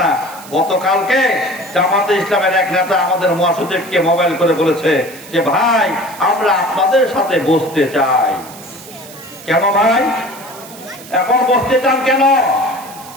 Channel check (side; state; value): right; noise; hiss, 18 dB below the sound